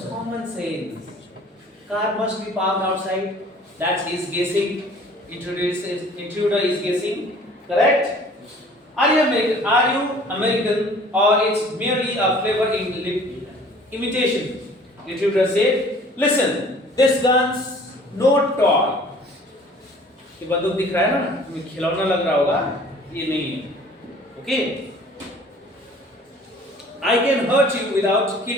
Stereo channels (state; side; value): normal; both; correlation 0.51